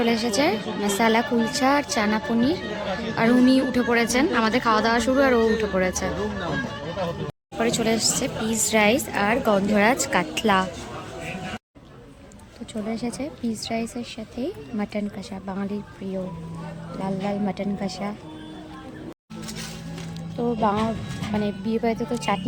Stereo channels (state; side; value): identical; both; correlation 1.00